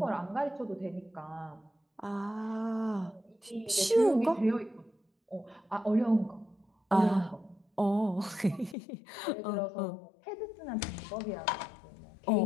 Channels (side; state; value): right; drops out; at 8.8 s